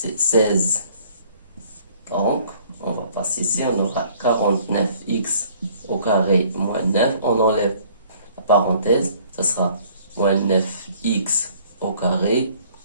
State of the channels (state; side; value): inverted; both; correlation -0.57